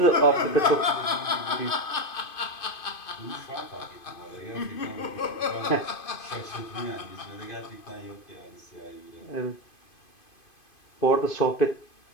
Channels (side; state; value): right; late; 2.5 ms